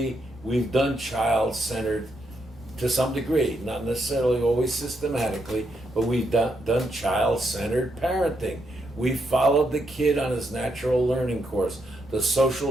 we've done child-centered, to some degree, not necessarily always systematically, but we've done child-centered parenting. We followed the kid on his natural learning course, the social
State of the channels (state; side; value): normal; both; correlation 0.80